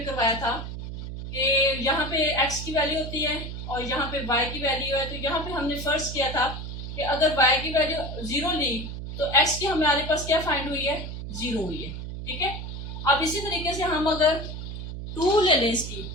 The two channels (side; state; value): right; noise; hum, 8 dB below the sound